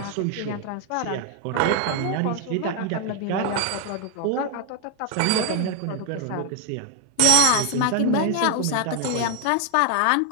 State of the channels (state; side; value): different; both; correlation 0.01